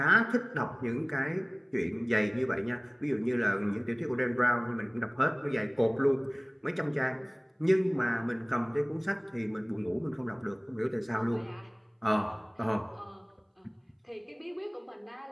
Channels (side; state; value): both; identical; correlation 1.00